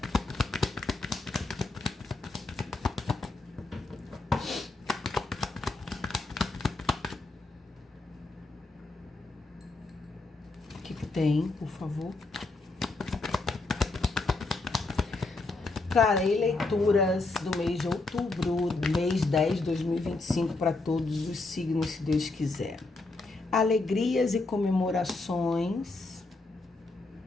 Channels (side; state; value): right; quieter; 3.3 dB